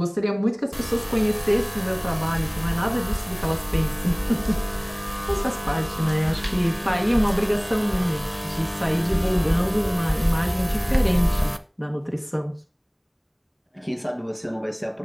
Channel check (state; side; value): identical; both; correlation 1.00